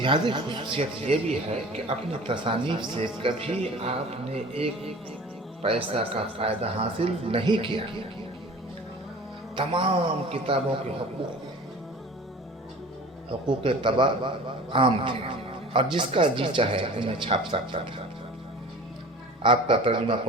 خصوصیت یہ بھی ہے کہ اپنی تصانیف سے کبھی آپ نے ایک پیسہ کا فائدہ حاصل نہیں کیا۔ تمام کتابوں کے حقوق طبع عام تھے اور جس کا جی چاہے انہیں چھاپ سکتا تھا۔ آپ کا ترجمہ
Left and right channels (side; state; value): both; normal; correlation 0.41